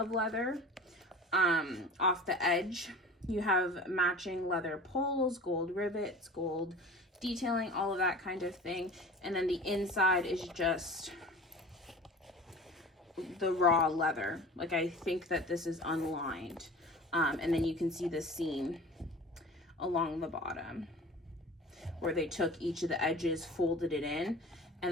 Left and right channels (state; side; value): normal; both; correlation 0.39